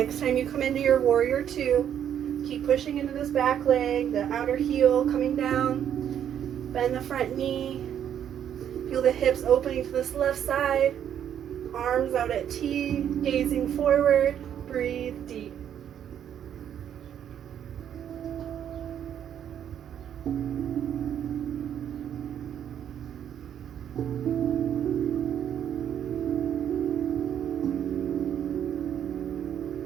time you come into your warrior two, keep pushing into this back leg, the outer heel coming down, bend the front knee, feel the hips opening to this left side, arms out at T, gazing forward, breathe deep.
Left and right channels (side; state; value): left; quieter; 9.5 dB